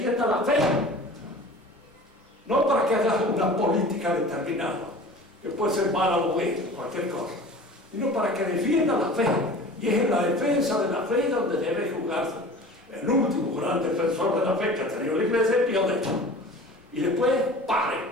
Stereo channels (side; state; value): both; normal; correlation 0.41